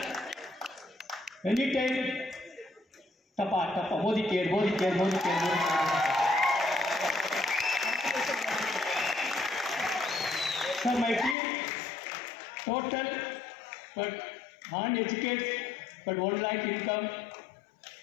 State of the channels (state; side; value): drops out; right; at 11.4 s